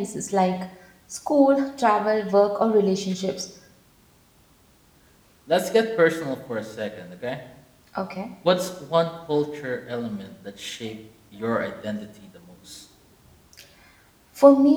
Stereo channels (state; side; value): identical; both; correlation 1.00